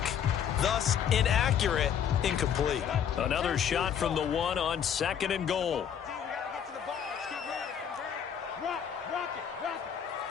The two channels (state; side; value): quieter; right; 8.5 dB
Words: thus inaccurate, incomplete. Another shot from the 1 on 2nd and goal.